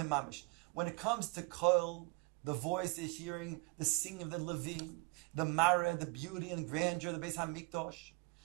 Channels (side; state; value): left; quieter; 28.1 dB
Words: When it comes to kol, the voice, the hearing, the singing of the Levim, the mara, the beauty and grandeur of the Beis Hamikdash,